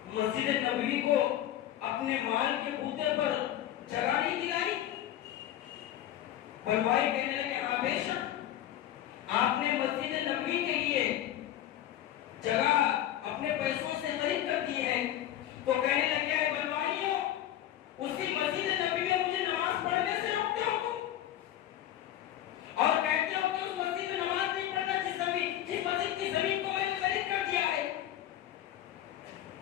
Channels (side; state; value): right; quieter; 12.2 dB